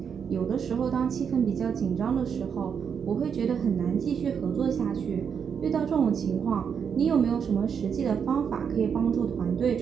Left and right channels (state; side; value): quieter; left; 7.1 dB